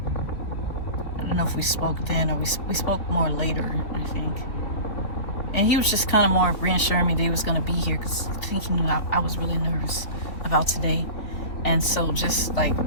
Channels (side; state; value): right; late; 3.6 ms